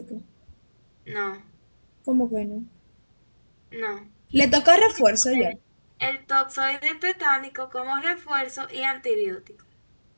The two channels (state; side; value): inverted; both; correlation -1.00